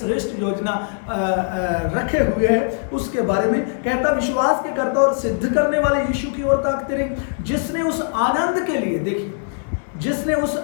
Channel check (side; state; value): right; silent; digital silence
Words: योजना रखे हुए है, उसके बारे में कहता विश्वास के कर्ता और सिद्ध करने वाले यीशु की ओर ताकते रहे, जिसने उस आनंद के लिए, देखिए, जिसने उस